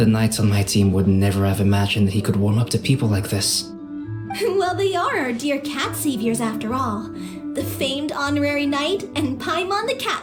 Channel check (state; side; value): identical; both; correlation 1.00